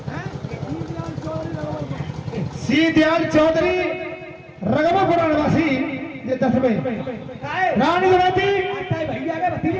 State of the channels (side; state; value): both; identical; correlation 1.00